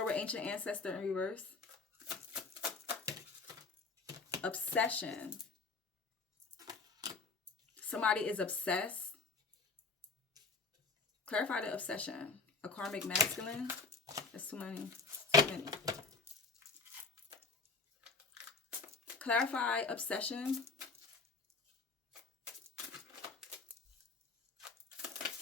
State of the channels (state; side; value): quieter; right; 4.4 dB